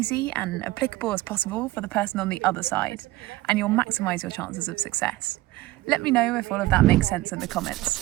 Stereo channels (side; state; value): left; quieter; 18.1 dB